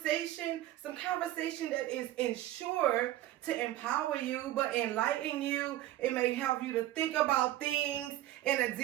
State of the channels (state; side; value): quieter; left; 14.3 dB